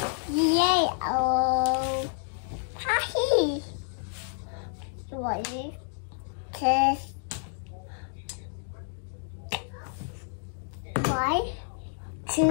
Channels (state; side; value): silent; right; digital silence